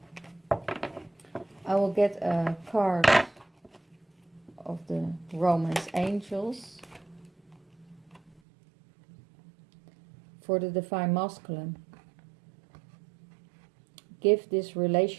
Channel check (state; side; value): drops out; left; at 8.4 s